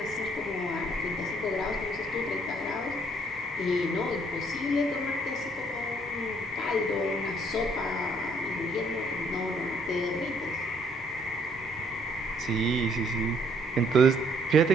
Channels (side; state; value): both; normal; correlation 0.65